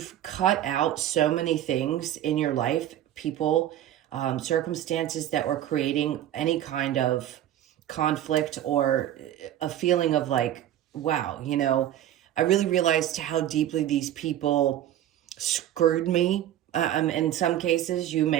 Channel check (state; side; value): quieter; left; 12.1 dB